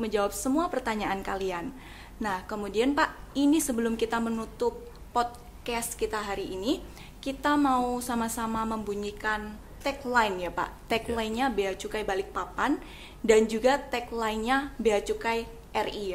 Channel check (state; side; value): identical; both; correlation 1.00